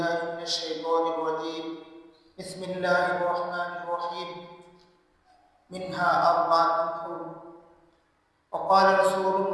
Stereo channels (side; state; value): both; identical; correlation 1.00